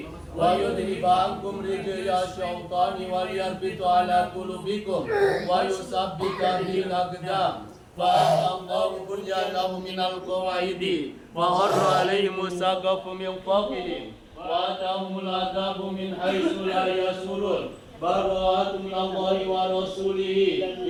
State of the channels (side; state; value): both; identical; correlation 1.00